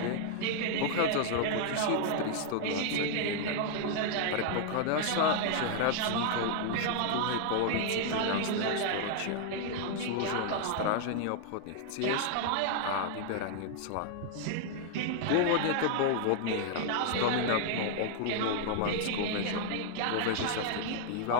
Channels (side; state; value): both; different; correlation 0.00